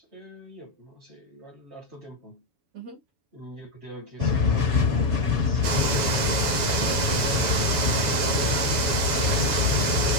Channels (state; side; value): late; left; 7.1 ms